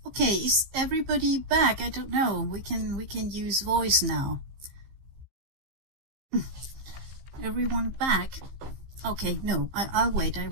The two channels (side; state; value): left; late; 15 ms